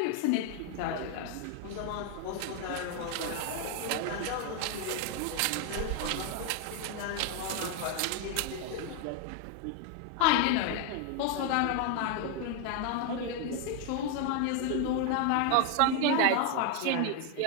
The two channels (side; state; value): both; different; correlation 0.01